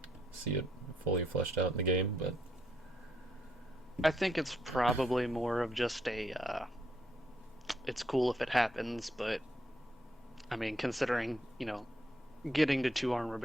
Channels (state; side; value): normal; both; correlation 0.74